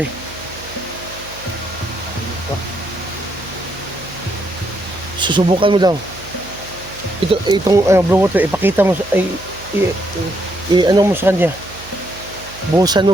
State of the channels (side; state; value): right; noise; hum, 18 dB below the sound